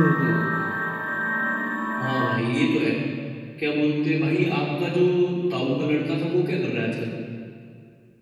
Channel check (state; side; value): identical; both; correlation 1.00